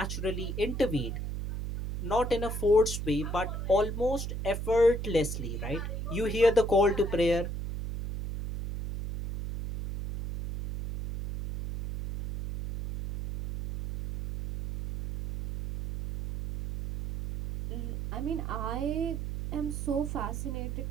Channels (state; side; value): noise; right; hum, 4 dB below the sound